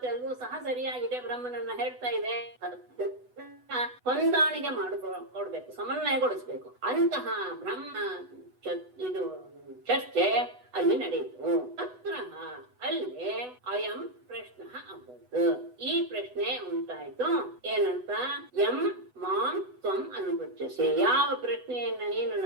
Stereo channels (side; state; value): left; late; 8.1 ms